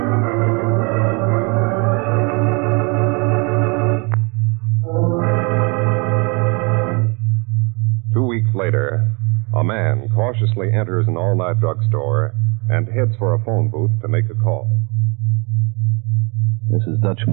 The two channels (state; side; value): quieter; left; 31.2 dB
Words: 2 weeks later, a man cautiously enters an all-night drugstore and heads for a phone booth to make a call. This is Dutch